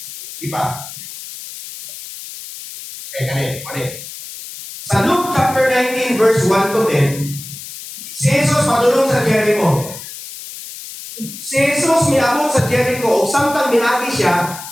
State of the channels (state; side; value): noise; left; hiss, 12 dB below the sound